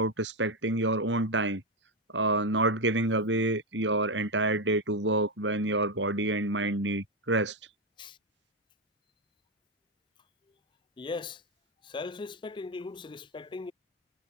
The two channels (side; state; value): both; normal; correlation 0.06